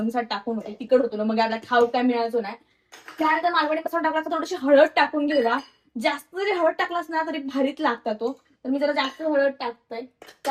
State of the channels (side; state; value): both; identical; correlation 1.00